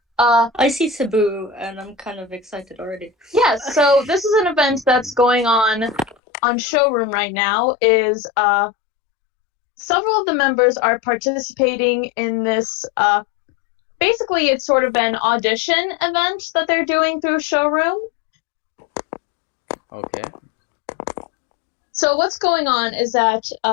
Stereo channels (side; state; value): right; drops out; at 6.2 s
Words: I see Cebu and I'm kind of excited already. Yes, so this is an event that's going on Showroom right now. Is several of the members are participating in this. Basically, it's sort of an audition event that they're doing through Showroom. Okay. So what's going on is that